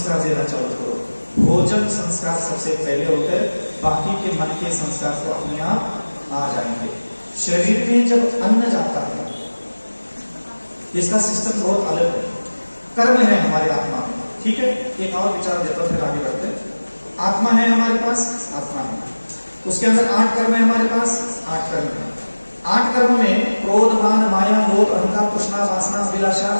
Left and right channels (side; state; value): both; inverted; correlation -1.00